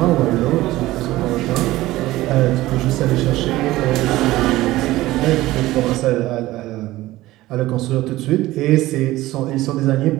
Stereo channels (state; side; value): quieter; left; 17.1 dB